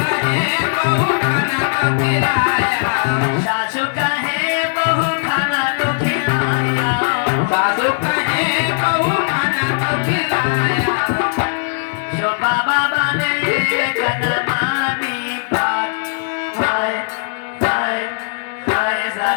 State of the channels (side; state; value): right; silent; digital silence